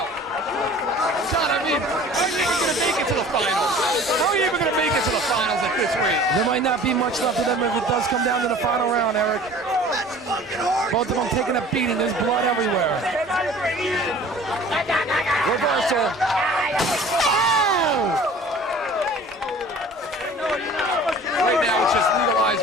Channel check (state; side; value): normal; both; correlation 0.46